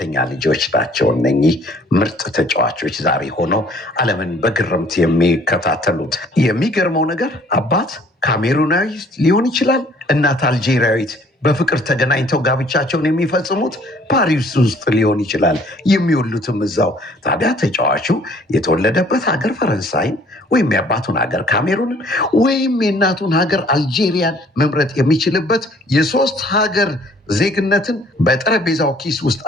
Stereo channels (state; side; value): normal; both; correlation 0.57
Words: ልጆች ናቸው። እነኚህ ምርጥ ተጫዋቾች ዛሬ ሆነው ዓለምን በግርምት የሚከታተሉት። የሚገርመው ነገር አባት ካሜሩናዊ ሊሆን ይችላል፣ እናት አልጄሪያዊት በፍቅር ተገናኝተው ጋብቻቸውን የሚፈጽሙት ፓሪስ ውስጥ ሊሆን ይችላል፣ የሚወሉትም እዛው። ታዲያ ተጫዋቹ የተወለደበት ሀገር ፈረንሳይን ወይም የአባቱን ሀገር ካሜሩንን ወይም የእናቱን ሀገር አልጄሪያን መምረጥ የሚችልበት የሶስት ሀገር ዜግነትን በጠረጴዛው ኪስ ውስጥ